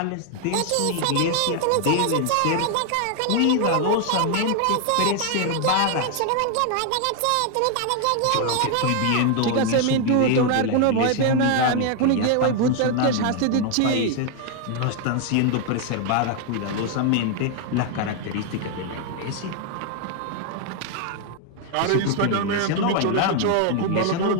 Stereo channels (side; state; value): both; different; correlation 0.00